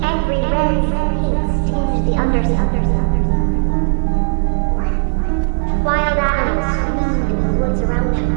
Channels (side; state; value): left; silent; digital silence